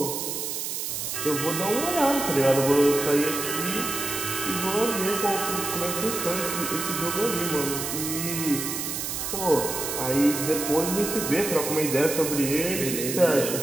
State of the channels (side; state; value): right; noise; hiss, 4 dB below the sound